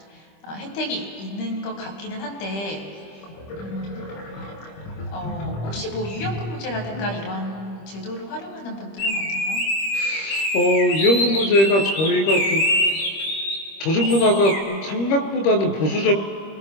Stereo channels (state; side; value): late; right; 25 ms